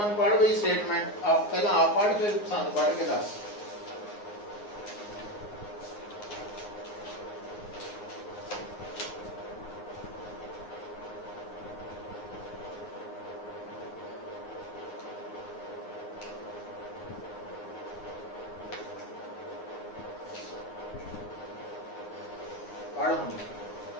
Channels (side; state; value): right; late; 9.6 ms